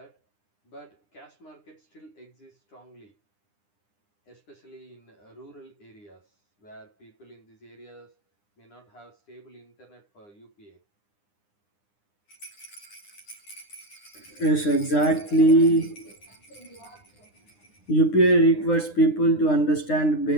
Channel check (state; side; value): late; right; 9.8 ms